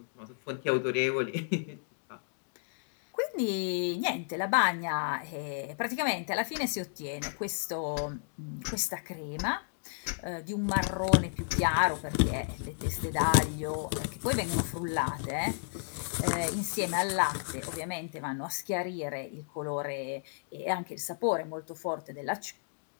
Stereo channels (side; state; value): right; silent; digital silence